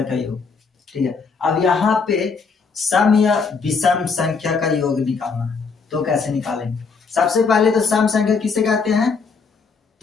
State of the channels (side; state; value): right; quieter; 5.0 dB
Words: का योग। ठीक है, अब यहाँ पे सम या विषम संख्या का योग निकालना है, तो कैसे निकालेंगे? सबसे पहले तो सम संख्या किसे कहते हैं?